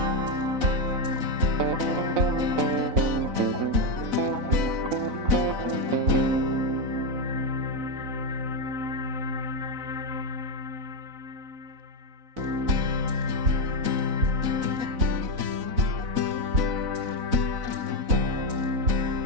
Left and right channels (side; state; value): left; late; 4.0 ms